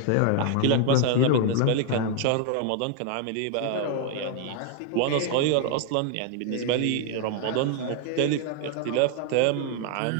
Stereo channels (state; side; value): different; both; correlation 0.00